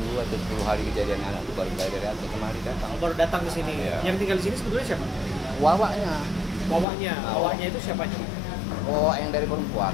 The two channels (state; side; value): drops out; right; at 6.9 s